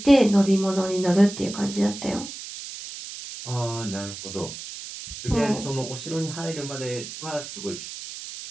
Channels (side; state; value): right; noise; hiss, 11 dB below the sound